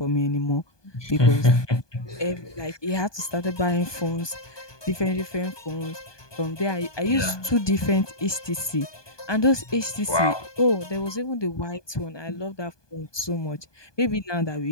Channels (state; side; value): late; right; 1.2 ms